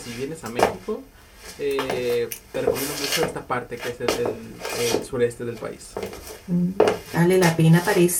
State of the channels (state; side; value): identical; both; correlation 1.00